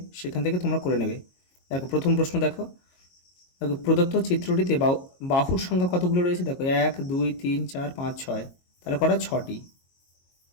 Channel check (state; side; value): late; right; 22 ms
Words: সেখান থেকে তোমরা করে নেবে। দেখো প্রথম প্রশ্ন দেখো, প্রদত্ত চিত্রটিতে বাহুর সংখ্যা কতগুলো রয়েছে? দেখো 1 2 3 4 5 6, তাহলে কটা? 6টি।